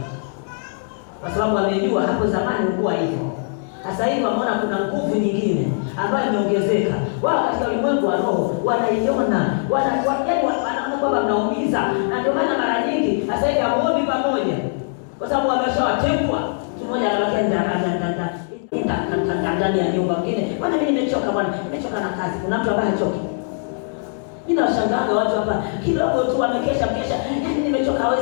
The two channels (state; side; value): silent; right; 65 dB below the other